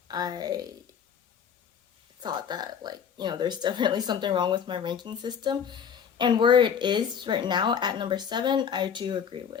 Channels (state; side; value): quieter; right; 7.6 dB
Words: thought that, there's definitely something wrong with my ranking system. And where it is right now at number 7, I do agree